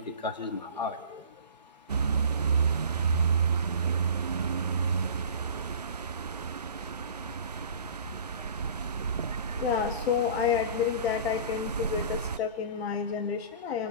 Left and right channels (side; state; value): both; inverted; correlation -0.39